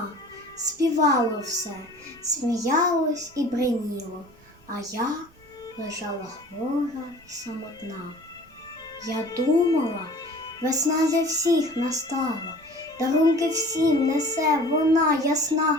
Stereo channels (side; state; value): right; noise; rumble, 28 dB below the sound